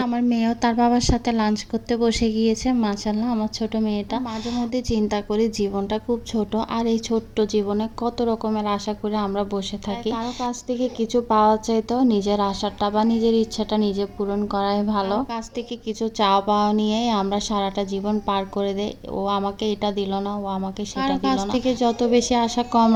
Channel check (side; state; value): both; identical; correlation 1.00